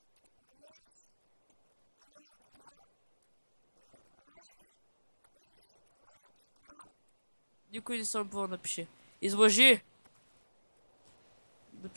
една значка. Никой не съм убил, напиши. Излъжи!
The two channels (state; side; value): inverted; both; correlation -1.00